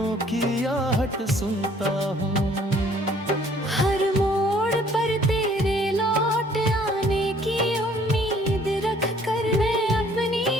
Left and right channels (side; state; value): both; normal; correlation 0.59